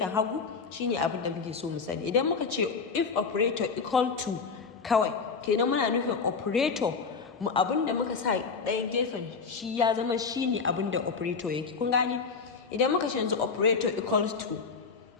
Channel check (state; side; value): quieter; right; 5.1 dB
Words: hagu, shine abin da muke so mu sani. Idan muka ce if operator equal to kawai, kenan muna nufin operator mu abin da muka sa ɗaya gefen shi ya zama shine abin da operator yake. Kun gane? Idan muka ce yanzu operator equals to